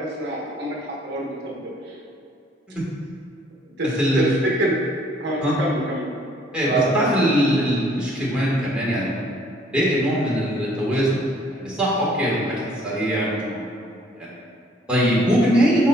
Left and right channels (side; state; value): both; normal; correlation 0.61